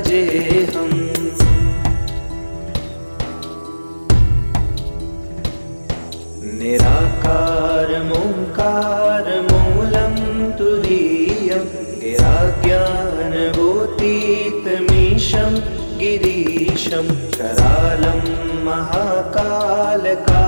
निराकारमोङ्कारमूलं तुरीयं गिराज्ञानभूतीतमीशं गिरीशं करालं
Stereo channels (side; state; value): both; inverted; correlation -1.00